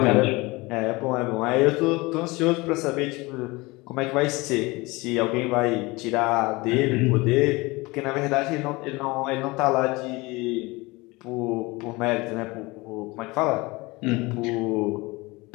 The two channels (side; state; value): right; quieter; 23.3 dB